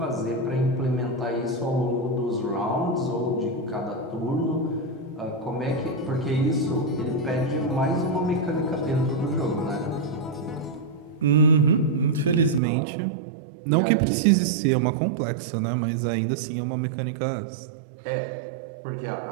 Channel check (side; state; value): left; drops out; at 12.6 s